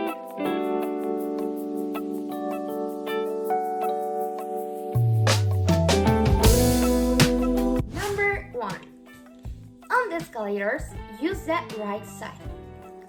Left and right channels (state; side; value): identical; both; correlation 1.00